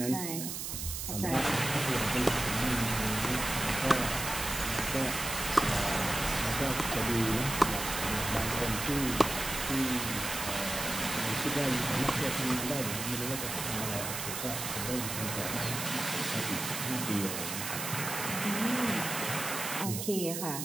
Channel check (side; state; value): right; noise; hiss, 4 dB below the sound